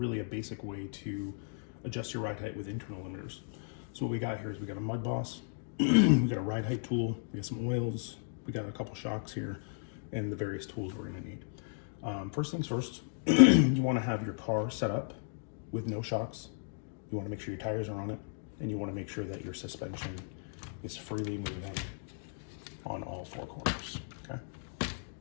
a basic way to adjust your ride height with internal limiters. So what we got here is we got a mudboss, we got a ride height tool, we got some oils, we got a couple shocks here, and the various tools we're going to need. First things first, you want to have your car set up with no shocks. You want to make sure your tires are on it, and you want to make sure that your suspension is freely moving on all four corners. Okay.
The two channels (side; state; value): right; silent; digital silence